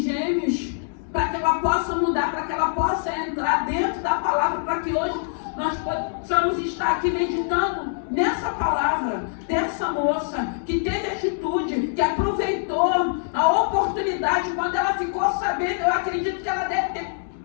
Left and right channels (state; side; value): silent; right; digital silence